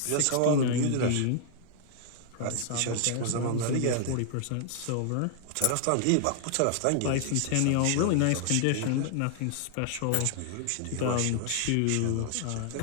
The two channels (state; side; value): different; both; correlation 0.00